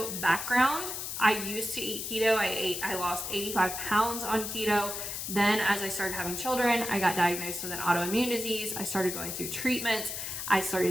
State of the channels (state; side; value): noise; left; hiss, 5 dB below the sound